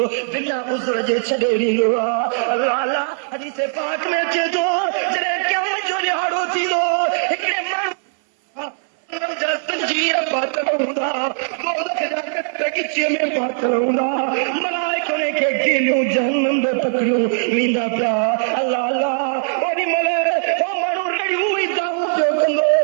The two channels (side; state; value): left; silent; 66 dB below the other